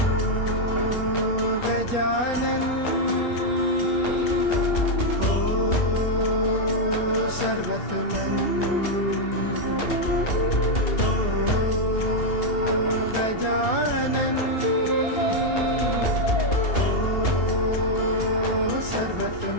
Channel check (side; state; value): right; late; 2.8 ms